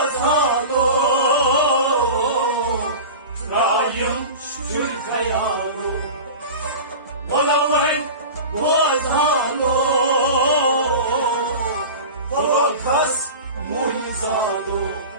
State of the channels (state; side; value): inverted; both; correlation -0.32